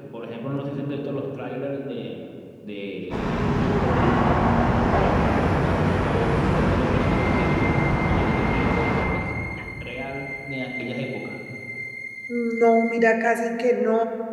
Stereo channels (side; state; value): both; identical; correlation 1.00